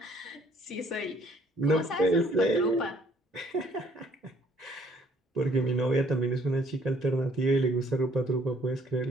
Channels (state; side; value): normal; both; correlation 0.62